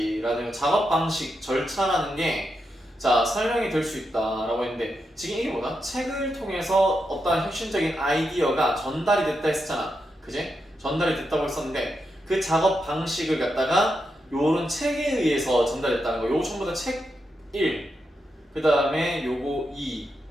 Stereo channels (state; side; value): normal; both; correlation 0.85